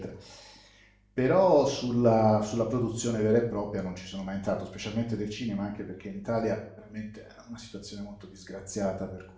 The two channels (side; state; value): both; identical; correlation 1.00